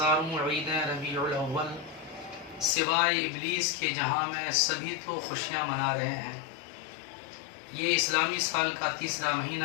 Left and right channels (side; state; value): right; drops out; at 2.8 s